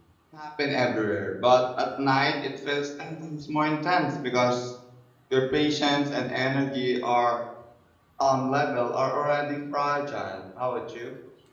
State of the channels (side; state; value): both; identical; correlation 1.00